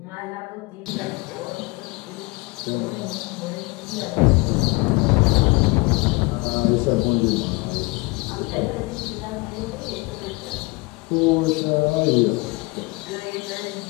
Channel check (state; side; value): quieter; right; 25.9 dB